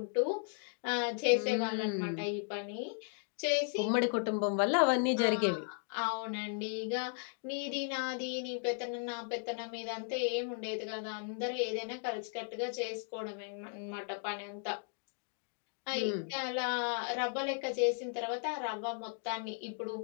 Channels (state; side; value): silent; right; 54 dB below the other